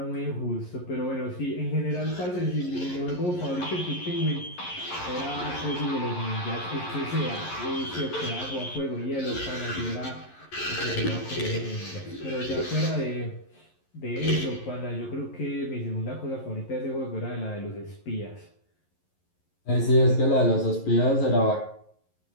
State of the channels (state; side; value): late; right; 11 ms